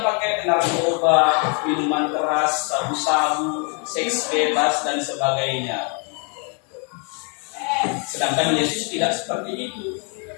pakai narkoba, minuman keras, sabu-sabu, seks bebas dan sebagainya. Sedangkan Yesus tidak seperti itu.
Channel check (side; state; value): right; quieter; 37.4 dB